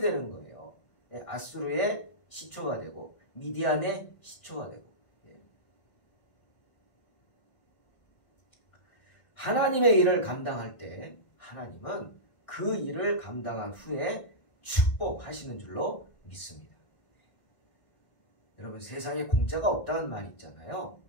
거예요. 아수르의 시초가 되고 미디안의 시초가 되고. 하나님의 일을 감당할 때 하나님은 그 일을 감당한 후에 축복하시는 줄로 믿습니다. 여러분, 세상에 공짜가 없다는 말이 있잖아요.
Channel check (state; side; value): late; right; 1.5 ms